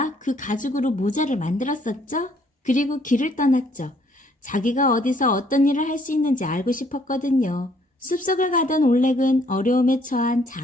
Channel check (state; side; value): normal; both; correlation 0.65